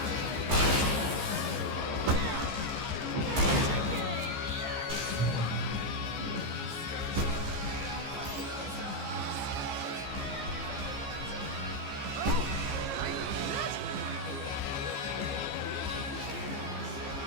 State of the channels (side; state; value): left; late; 15 ms